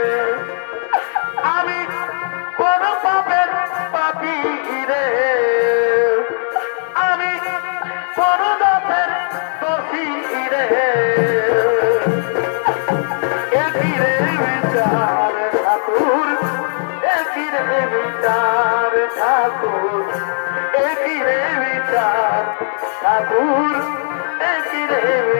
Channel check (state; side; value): silent; right; digital silence